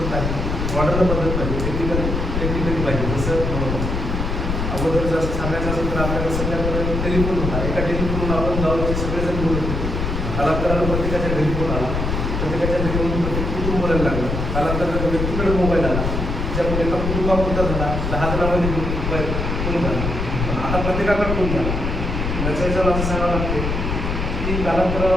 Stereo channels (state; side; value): noise; left; rumble, 2 dB below the sound